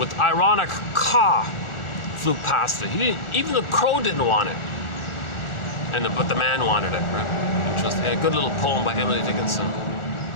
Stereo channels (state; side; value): late; right; 1.4 ms